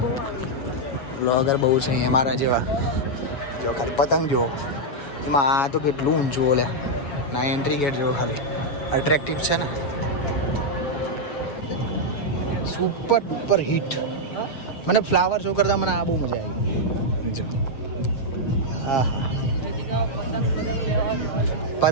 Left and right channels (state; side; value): late; right; 7.0 ms